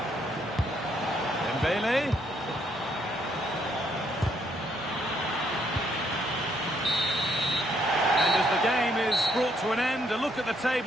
Dembele. And as the game is brought to an end, a look at the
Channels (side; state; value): both; normal; correlation 0.71